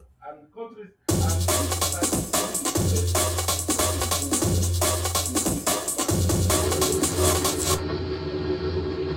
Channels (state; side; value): identical; both; correlation 1.00